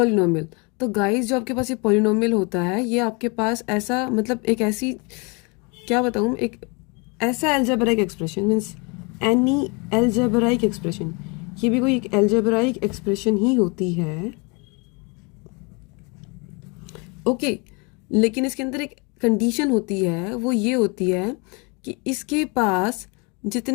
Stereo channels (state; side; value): quieter; right; 30.7 dB